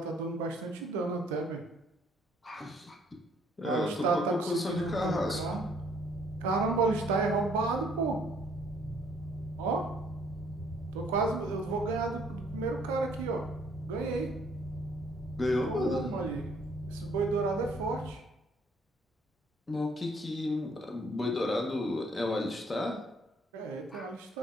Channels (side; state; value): both; normal; correlation 0.63